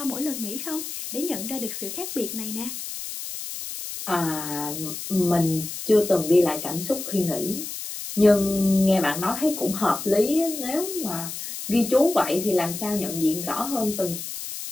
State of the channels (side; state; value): left; noise; hiss, 8 dB below the sound